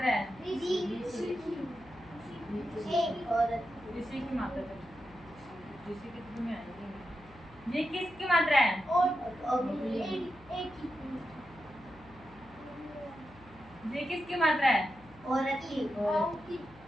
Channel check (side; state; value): left; noise; hum, 23 dB below the sound